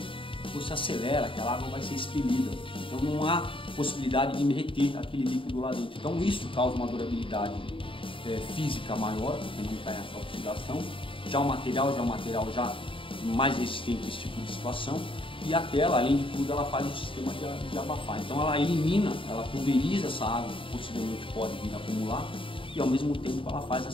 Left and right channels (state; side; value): late; right; 0.25 ms